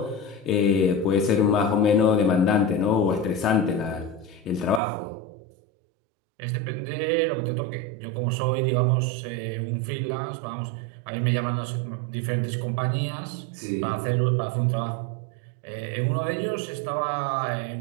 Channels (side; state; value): left; drops out; at 4.8 s